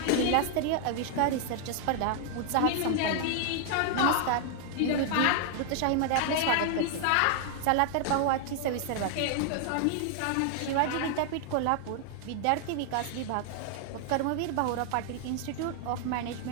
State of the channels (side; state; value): both; different; correlation 0.00